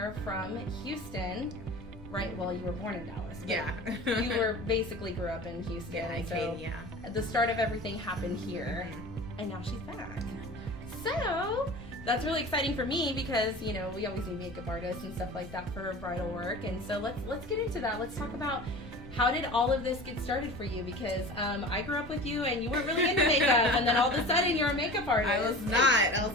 from Houston. Right, well, you were born in Dallas. Yeah. You were basically grew up in Houston. Yeah, I so came, the start of everything happened here, and now she's back. So that's really exciting for me because, you know, we always need makeup artists and stuff like that for bridal work. And so let's get into that. Let's talk about how did all of this get started for you? Because I grew up with you and you weren't really into makeup, and then all of a sudden you're a makeup artist. I was not. I was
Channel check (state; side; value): normal; both; correlation 0.37